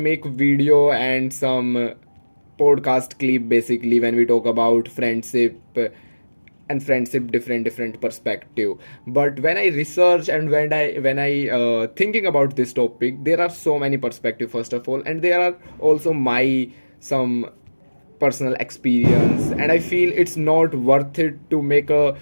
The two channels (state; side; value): inverted; both; correlation -1.00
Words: video and some podcast clip basically when we talk about friendship and friendship different perspective. But when I research and when I thinking about this topic, there are so many perspective first of all, and there are also my some personal experience, and I feel it's not worth it to make a